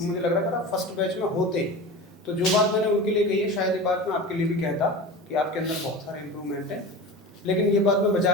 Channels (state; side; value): normal; both; correlation 0.31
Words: मुझे लग रहा है अगर आप फर्स्ट बैच में होते तो जो बात मैंने उनके लिए कही है शायद ये बात मैं आपके लिए भी कहता कि आपके अंदर बहुत सारे इंप्रूवमेंट है। लेकिन ये बात मैं बचा